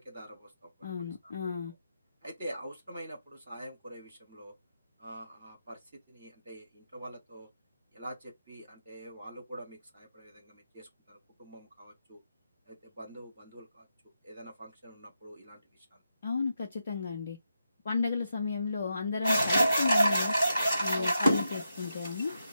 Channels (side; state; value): both; inverted; correlation -0.86